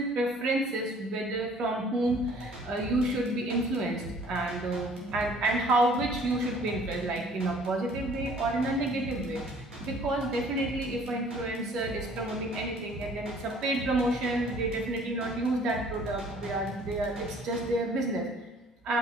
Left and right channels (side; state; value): both; normal; correlation 0.55